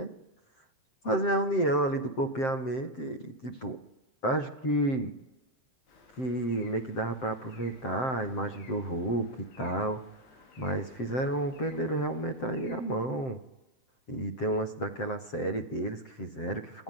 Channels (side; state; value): right; late; 7.7 ms